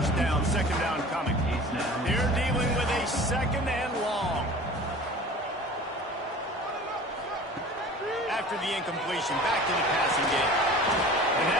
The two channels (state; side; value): normal; both; correlation 0.41